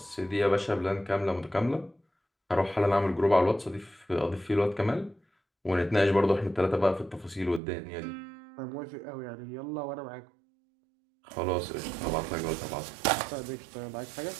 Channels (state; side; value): drops out; left; at 7.6 s